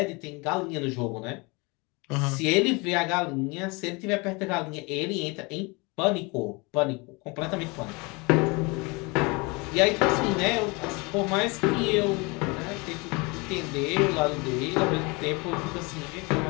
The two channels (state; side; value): quieter; right; 27.6 dB